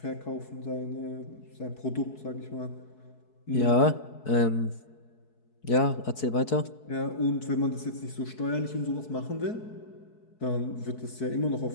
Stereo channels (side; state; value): right; late; 4.7 ms